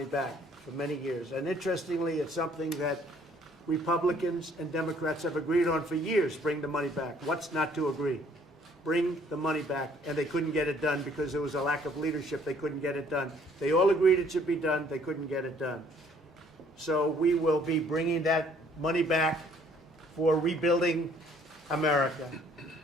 back for many years. And interestingly, it's something that Republicans and Democrats have agreed on for years. Bring the money back. What's not to agree? Bring the money back. And they couldn't get it done because there was a lack of leadership. They couldn't get it done. They all agreed it should be done. They couldn't get it done. So we will be bringing that money back for rebuilding America.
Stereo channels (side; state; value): both; normal; correlation 0.61